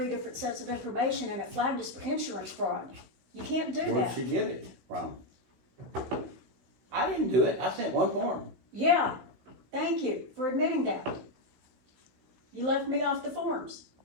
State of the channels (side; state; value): left; late; 16 ms